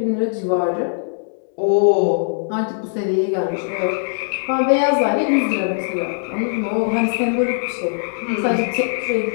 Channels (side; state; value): right; silent; digital silence